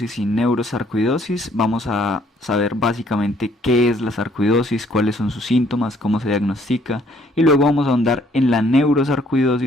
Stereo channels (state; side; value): normal; both; correlation 0.65